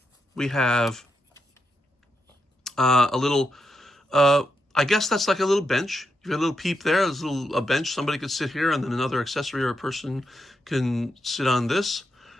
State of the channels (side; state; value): both; normal; correlation 0.83